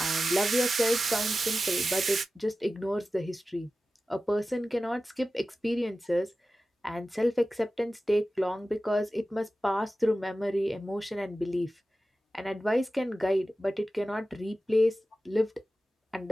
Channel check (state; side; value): normal; both; correlation 0.94